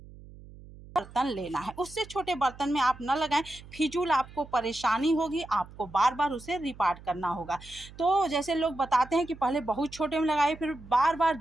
बर्तन लेना है, उससे छोटे बर्तन में आप न लगाएं। फिजूल आपको परेशानी होगी, आपको बार बार उसे रिपार्ट करना होगा। तो जैसे लोग बताते हैं कि पहले बहुत छोटे में लगाए, फिर बार बार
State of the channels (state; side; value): noise; right; hum, 19 dB below the sound